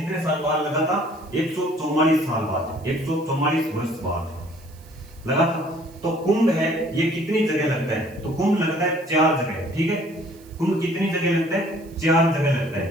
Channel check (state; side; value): noise; right; hiss, 26 dB below the sound